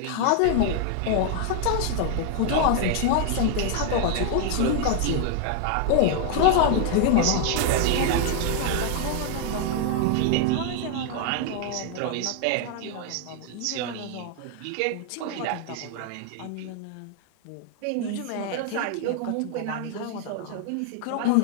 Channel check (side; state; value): both; different; correlation 0.00